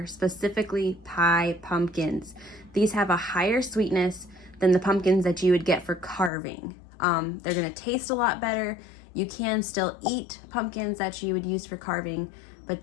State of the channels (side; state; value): right; drops out; at 6.3 s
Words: specifically pie pumpkins. These have a higher sweetness than the pumpkins that you would get for carving. They're going to taste a lot better. You can still eat pumpkins that you would use for carving, but